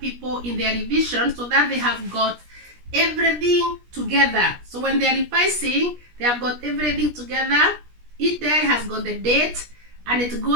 in their revision so that they have got everything together. So when they are revising, they have got everything together. Each diary has got the date and it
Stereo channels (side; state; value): left; late; 17 ms